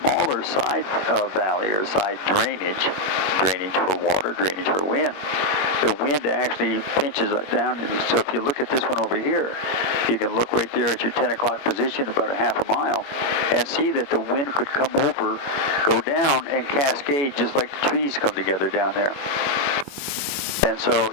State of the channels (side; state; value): right; late; 21 ms